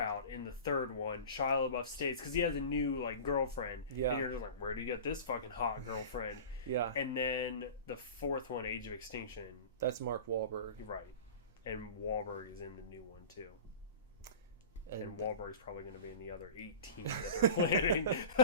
in the third one. Shia LaBeouf stays because he has a new like girlfriend. Yeah. And you're just like, where do you get this fucking hot girlfriend? yeah, And then the fourth one, Age of Extinction. that's Mark Wahlberg. Right. And Wahlberg is in the new one too. And Wahlberg's probably going to be in the other 18 that they're planning.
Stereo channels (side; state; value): both; inverted; correlation -0.35